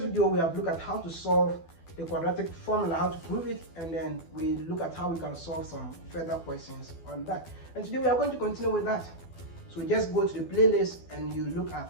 video we have looked at how to solve the quadratic formula, how to prove it, and then we look at how we can solve some further questions on that. And today we are going to continue with that. So just go to the playlist and you look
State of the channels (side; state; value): right; late; 12 ms